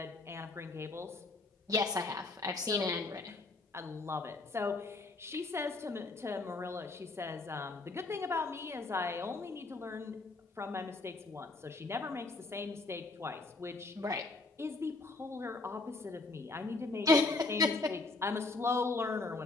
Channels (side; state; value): right; quieter; 3.4 dB